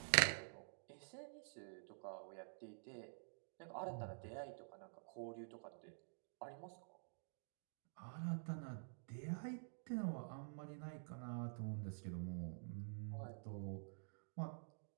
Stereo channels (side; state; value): left; silent; digital silence